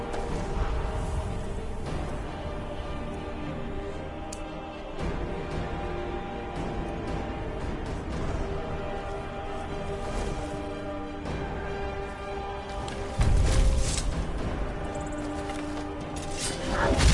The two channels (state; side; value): identical; both; correlation 1.00